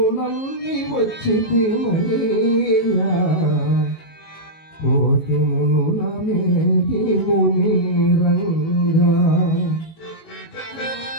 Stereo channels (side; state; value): right; late; 19 ms